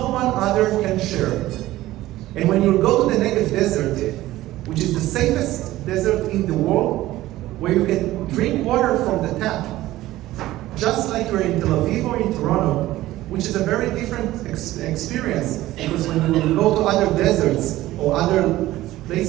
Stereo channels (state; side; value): quieter; left; 16.0 dB